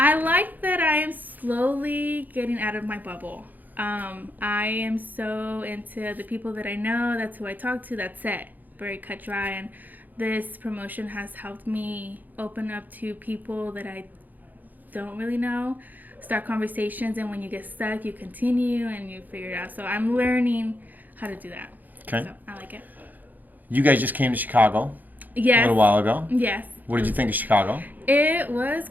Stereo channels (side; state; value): left; late; 0.084 ms